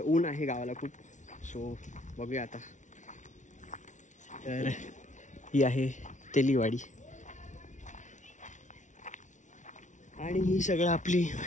ऊन आहे गावाला खूप. सो बघूया आता. तर ही आहे तेलीवाडी आणि ही सगळं आपली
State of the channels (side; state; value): right; late; 0.36 ms